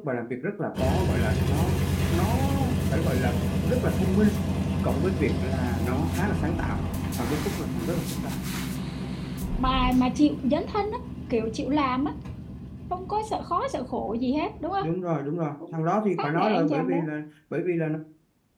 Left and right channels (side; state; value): both; identical; correlation 1.00